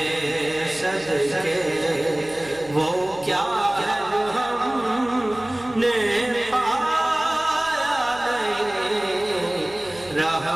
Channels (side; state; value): right; noise; hum, 22 dB below the sound